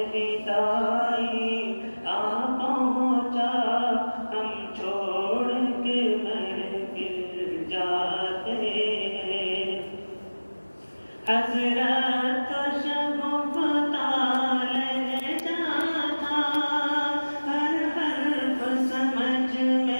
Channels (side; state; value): both; inverted; correlation -1.00